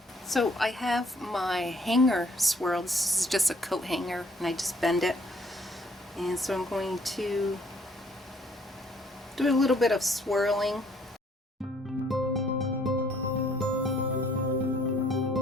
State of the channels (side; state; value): both; normal; correlation 0.63